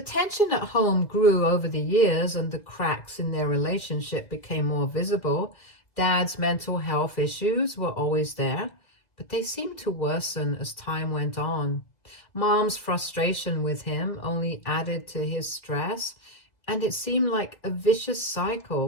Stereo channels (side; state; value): right; late; 2.0 ms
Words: tension at home grew over the years and the cracks in their relationship became more visible. Dad's mental health issues were always there, but they seemed to worsen as time went on. Mom's frustration with him only added to his stress, and it seemed like a vicious